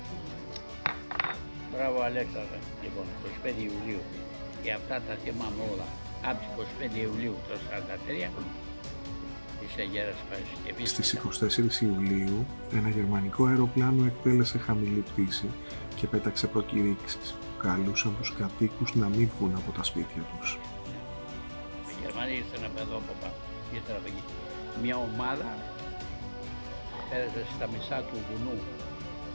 Μπράβο Αλέξανδρε, λοιπόν, 25 Ιουλίου. Και αυτά τα θυμάμαι όλα. Από τις 25 Ιουλίου το 1943 της Αγέρας Παρασκευής. Στις 24 Ιουλίου ένα γερμανικό αεροπλάνο εκτέλεσε χαμηλή πτήση και πέταξε προκηρύξεις που καλούσαν τους κατοίκους να μην βγουν από τα σπίτια τους. Οι Γερμανοί ήρθαν από εδώ από πάνω, ήρθαν από εκεί. Μια ομάδα πέρασε στα μισά του βουνού.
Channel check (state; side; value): inverted; both; correlation -1.00